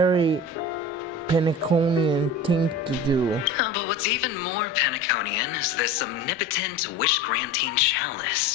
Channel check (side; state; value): both; normal; correlation 0.35